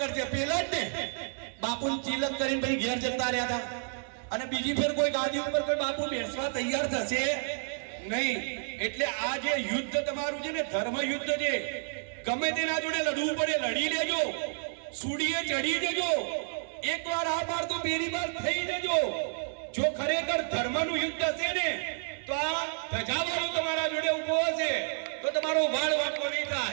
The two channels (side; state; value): left; silent; digital silence